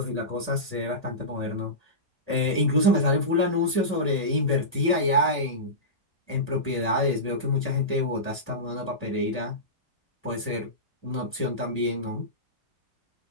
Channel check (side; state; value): both; normal; correlation -0.19